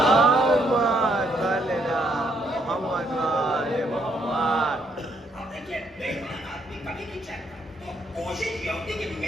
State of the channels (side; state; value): both; normal; correlation 0.72